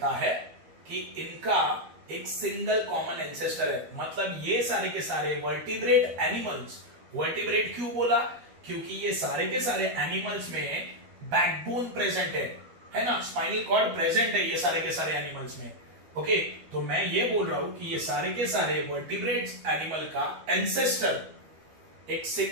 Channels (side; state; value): left; late; 12 ms